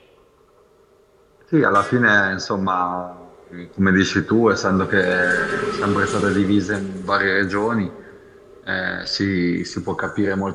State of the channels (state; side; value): identical; both; correlation 1.00